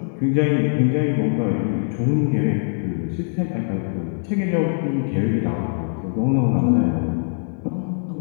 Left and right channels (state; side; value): silent; right; digital silence